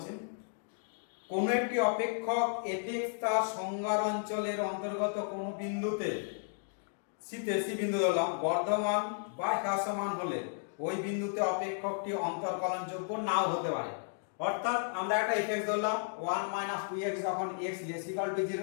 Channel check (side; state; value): right; silent; digital silence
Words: কোন একটি অপেক্ষক fx তার সংজ্ঞার অঞ্চলের অন্তর্গত কোন বিন্দুতে সি বিন্দু ধরলাম বর্ধমান বা হ্রাসমান হলে ওই বিন্দুতে অপেক্ষকটি অন্তর্কলনযোগ্য নাও হতে পারে। অর্থাৎ আমরা একটা fx ধরলাম 1 - 2x যখন x > 0